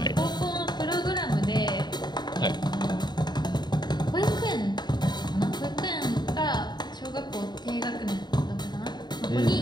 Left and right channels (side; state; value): right; late; 0.21 ms